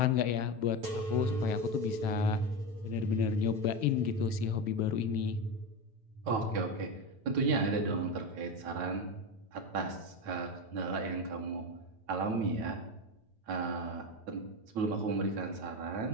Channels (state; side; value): late; left; 9.1 ms